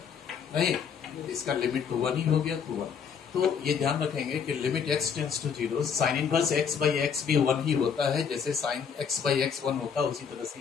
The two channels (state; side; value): quieter; right; 6.9 dB